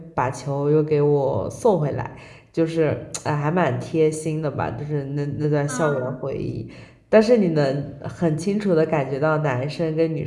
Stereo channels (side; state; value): both; identical; correlation 1.00